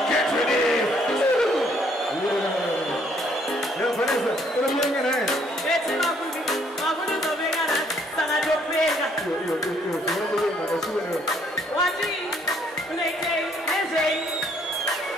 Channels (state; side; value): normal; both; correlation 0.65